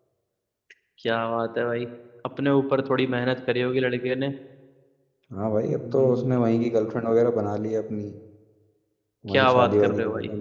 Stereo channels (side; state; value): both; identical; correlation 1.00